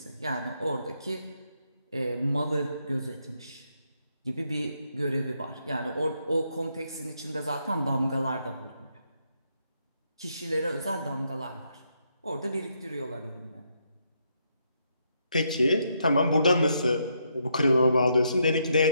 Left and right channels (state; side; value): inverted; both; correlation -0.77